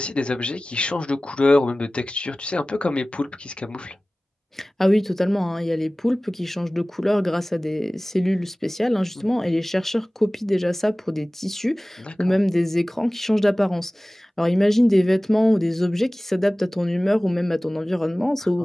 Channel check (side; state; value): both; normal; correlation 0.98